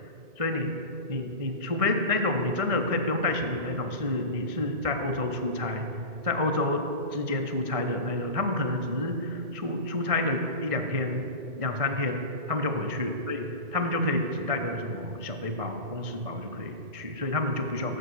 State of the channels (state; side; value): late; left; 1.6 ms